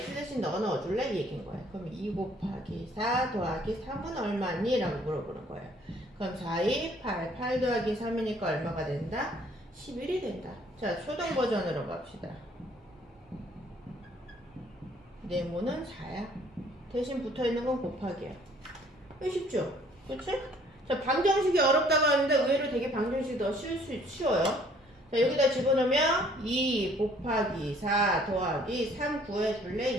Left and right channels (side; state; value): both; normal; correlation 0.59